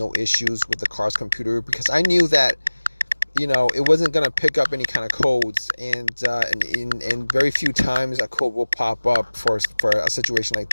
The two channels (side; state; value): both; inverted; correlation -1.00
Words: issues with the car's computer, because I knew that it wasn't going to pick up any kind of codes, and very few times a code will pop up for a situation like